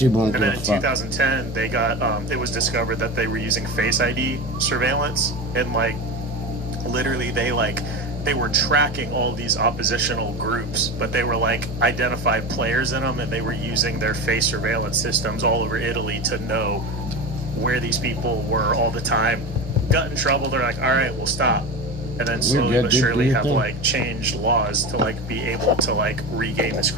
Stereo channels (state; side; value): normal; both; correlation 0.25